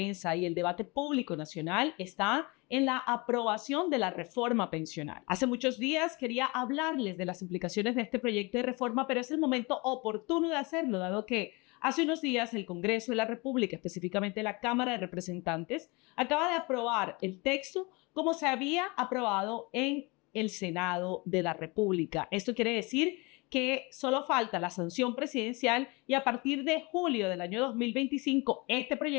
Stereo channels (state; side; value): quieter; right; 26.7 dB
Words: y el debate público nacional está en la aprobación de la reforma pensional. Hace muchos días quería hablarles de las implicaciones de este proyecto de reforma, pero es el momento oportuno de hacerlo, dado que hace unos días el Congreso de la República, específicamente la Cámara de Representantes, acaba de aprobar el texto como se había aprobado en el Senado de la República. Esto quiere decir que solo falta la sanción presidencial y a partir de julio del año 2025 este